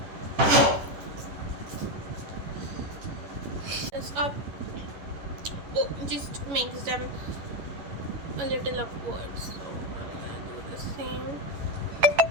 This up, just makes them a little upwards. So I'm gonna do the same.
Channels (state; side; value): late; left; 11 ms